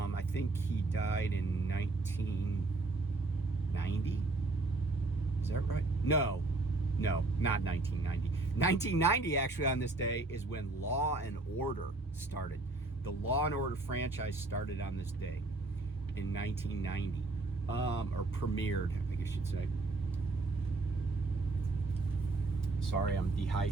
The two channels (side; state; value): left; quieter; 3.2 dB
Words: think he died in 1990. Is that right? No, not 1990. 1990, actually, on this day is when Law and Order started. The Law and Order franchise started on this day in 1990, or premiered, I guess you'd say. Sorry, I'm